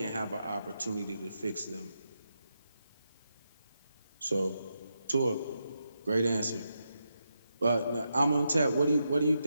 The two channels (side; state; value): both; inverted; correlation -0.85